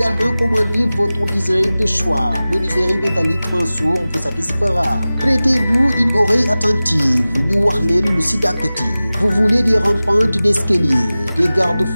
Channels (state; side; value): inverted; both; correlation -0.97